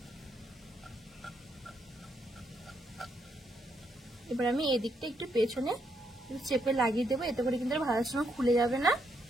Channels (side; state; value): both; normal; correlation 0.77